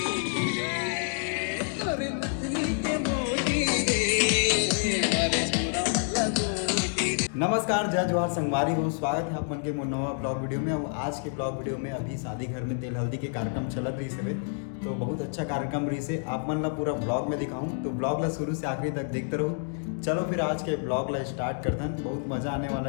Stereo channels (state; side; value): silent; right; 59 dB below the other